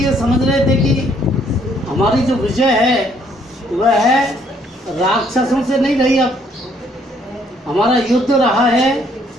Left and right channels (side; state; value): both; normal; correlation 0.66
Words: समझ रहे थे कि हमारी जो विजय है वह है राक्षसों से नहीं रही, अब हमारा युद्ध रहा है